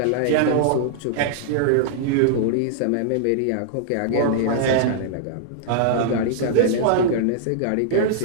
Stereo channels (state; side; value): different; both; correlation -0.01